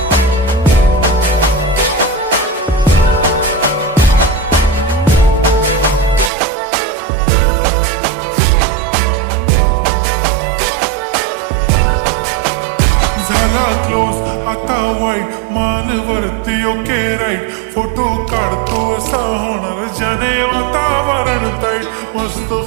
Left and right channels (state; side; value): drops out; left; at 6.3 s